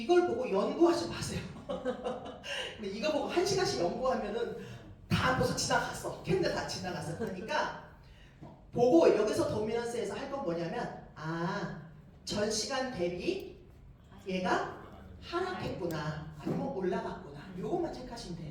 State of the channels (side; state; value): both; identical; correlation 1.00